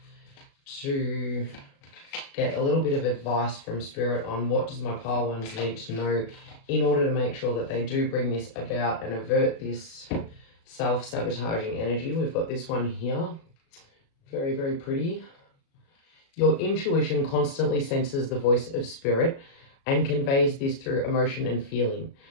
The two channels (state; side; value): late; right; 36 ms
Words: to get a little bit of advice from Spirit on what does my pile ones need to know in order to make sure that they do bring this about and avert this self-sabotaging energy. We've got this one here. Very, very pretty. Your intuition constantly senses the voice of Spirit and conveys this through emotion and feeling.